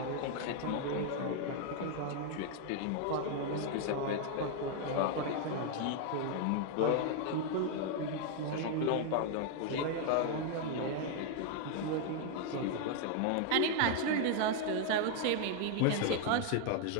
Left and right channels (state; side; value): different; both; correlation 0.00